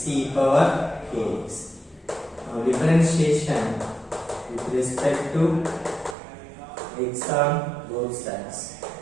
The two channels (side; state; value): left; drops out; at 6.2 s